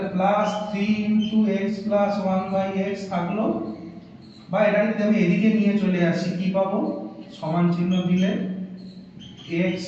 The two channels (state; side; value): identical; both; correlation 1.00